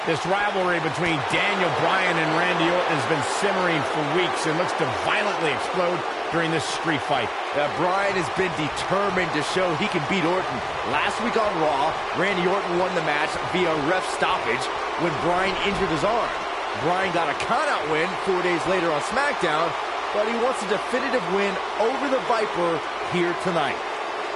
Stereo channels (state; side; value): identical; both; correlation 1.00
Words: This rivalry between Daniel Bryan and Randy Orton has been simmering for weeks and looks to violently explode during this street fight. Bryan has been determined to show he can beat Orton. Last week on Raw, Randy Orton won the match via ref stoppage when Bryan injured his arm. Bryan got a countout win 4 days later on SmackDown, but he wants a definitive win over the Viper here tonight.